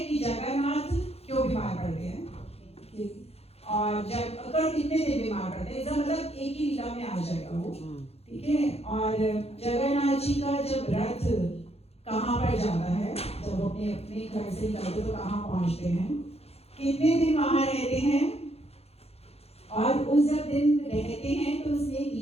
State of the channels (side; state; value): right; late; 0.29 ms